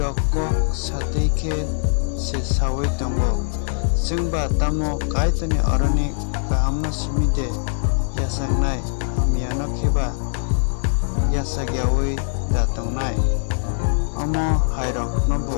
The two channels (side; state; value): right; silent; 59 dB below the other